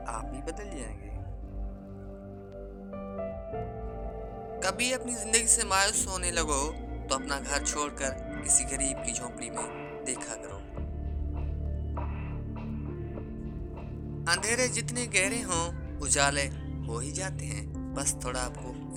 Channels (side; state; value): both; identical; correlation 1.00